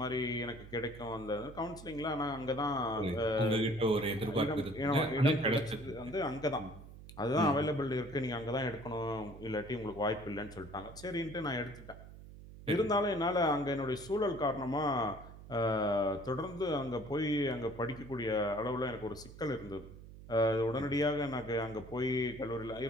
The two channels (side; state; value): right; noise; hum, 16 dB below the sound